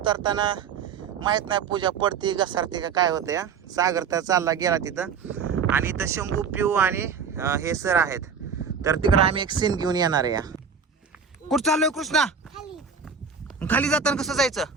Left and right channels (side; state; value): left; quieter; 6.1 dB